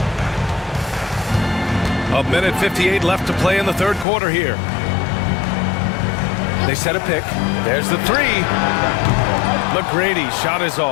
A minute 58 left to play in the third quarter here. They set a pick. There's the 3. McGrady shot is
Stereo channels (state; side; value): drops out; right; at 4.0 s